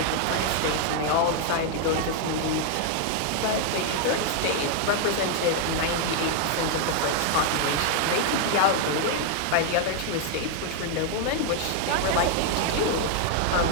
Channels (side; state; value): both; different; correlation 0.00